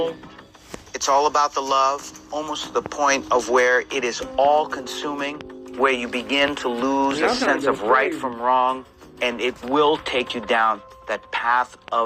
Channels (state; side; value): identical; both; correlation 1.00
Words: it's all about the love, almost to the point of where it is all-consuming, where you begin to lose a sense of right from wrong, and it will take you down that path